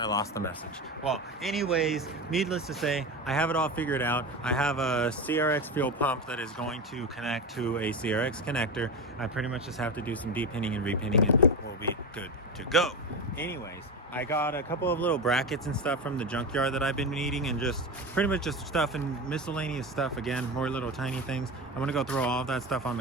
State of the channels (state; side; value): normal; both; correlation 0.21